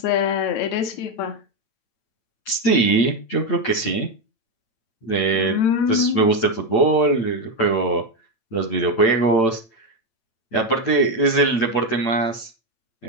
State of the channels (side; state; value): right; late; 8.9 ms